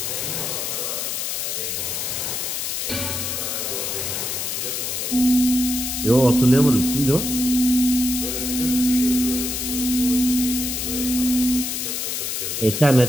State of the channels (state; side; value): noise; left; hiss, 2 dB below the sound